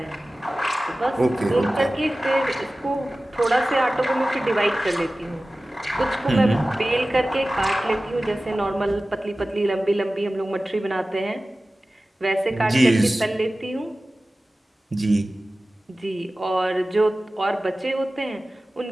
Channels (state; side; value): normal; both; correlation 0.96